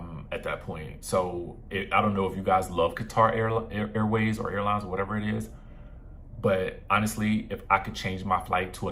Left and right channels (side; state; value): both; identical; correlation 1.00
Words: that point. So I don't know if you guys love Qatar Airways or airlines or whatever it is, but honestly, if I could change my flight to